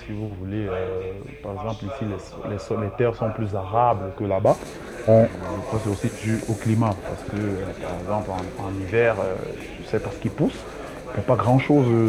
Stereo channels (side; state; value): both; identical; correlation 1.00